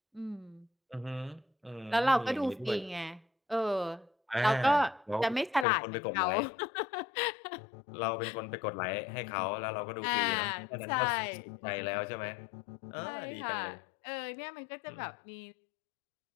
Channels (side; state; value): right; drops out; at 5.7 s